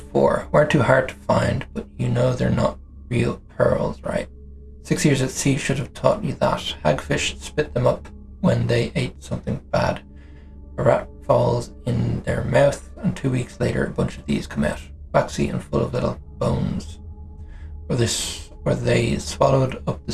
for. Weren't too hard to find, but you know they're not real pearls, right? 6 years at sea should have taught you that. Hagfish spit them up when they ate something bad. A rat falls in their mouth, and 2 weeks later a bunch of these come out. Waxy and full of little bones. or they swallowed up the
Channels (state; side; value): identical; both; correlation 1.00